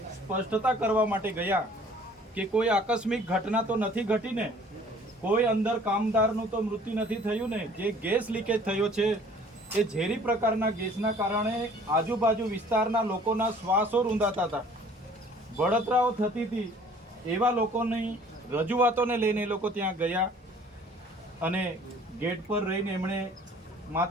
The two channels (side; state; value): both; normal; correlation 0.53